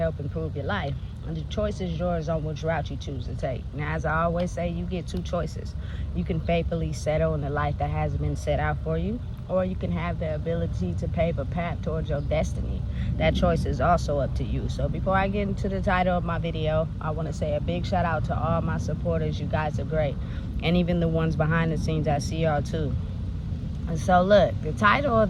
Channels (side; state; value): both; identical; correlation 1.00